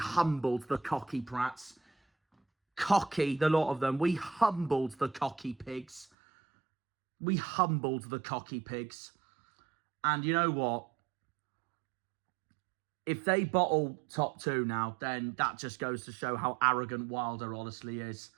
the cocky prats. Cocky, the lot of them. We humbled the cocky pigs. And you know what? If they bottle top two now, then that just goes to show how arrogant Wilder honestly is.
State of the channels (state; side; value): drops out; left; at 6.1 s